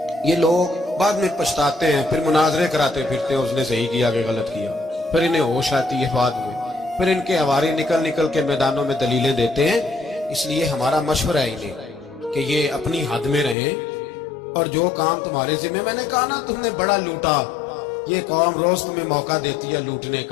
یہ لوگ بعد میں پچھتاتے ہیں، پھر مناظرے کراتے پھرتے ہیں اس نے صحیح کیا کہ غلط کیا، پھر انہیں ہوش آتی ہے بعد میں، پھر ان کے ہواری نکل نکل کے میدانوں میں دلیلیں دیتے ہیں. اس لیے ہمارا مشورہ ہے انہیں کہ یہ اپنی حد میں رہیں، اور جو کام تمہارے ذمہ، میں نے کہا نا تم نے بڑا لوٹا، یہ قوم روز تمہیں موقع دیتی ہے لوٹنے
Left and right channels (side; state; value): right; drops out; at 13.6 s